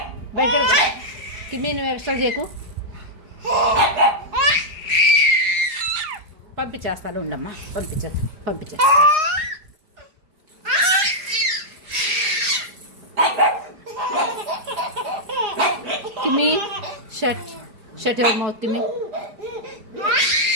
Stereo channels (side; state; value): left; late; 4.8 ms